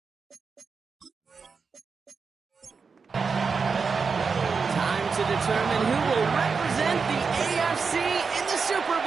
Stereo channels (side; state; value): left; quieter; 5.2 dB